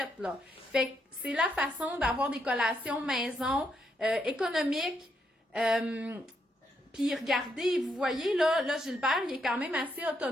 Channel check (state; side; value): normal; both; correlation 0.78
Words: là. Fait que c'est la façon d'avoir des collations maison, économiques. Puis regardez, vous voyez, là, Gilbert, il est quand même assez